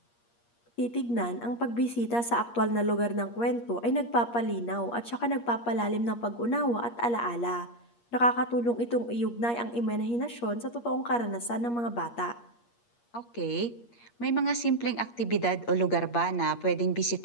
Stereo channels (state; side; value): late; right; 8.5 ms